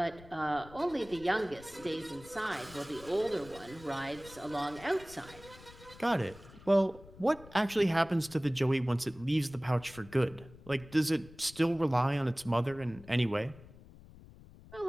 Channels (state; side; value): noise; left; rumble, 20 dB below the sound